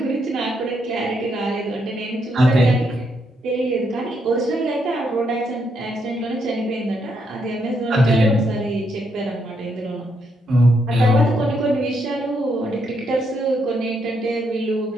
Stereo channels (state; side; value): normal; both; correlation 0.77